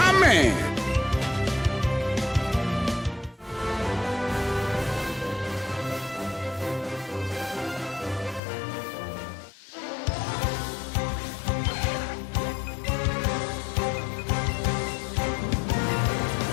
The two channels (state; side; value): drops out; right; at 8.4 s